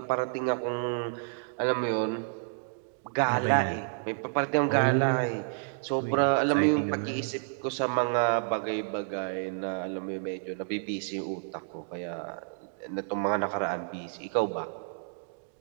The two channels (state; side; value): silent; left; digital silence